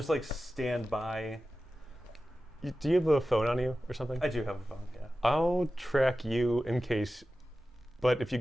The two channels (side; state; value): both; normal; correlation 0.94